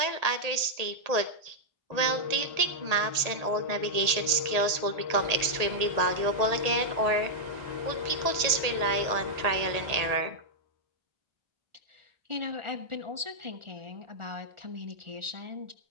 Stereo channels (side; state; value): left; late; 1.8 ms